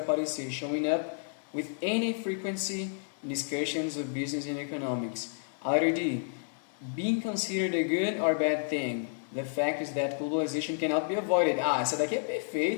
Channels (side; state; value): right; silent; digital silence